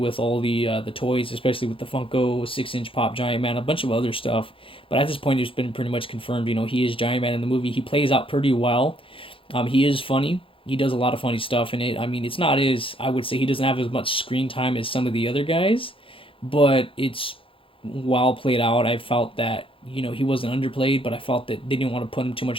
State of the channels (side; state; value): right; late; 0.26 ms